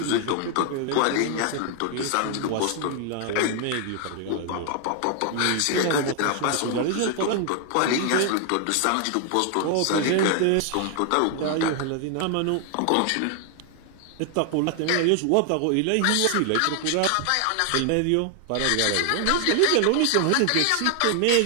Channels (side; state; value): both; different; correlation 0.00